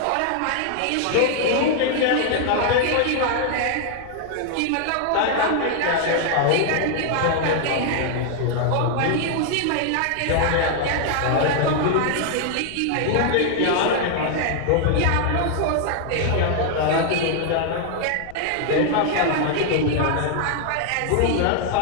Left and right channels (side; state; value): both; different; correlation 0.00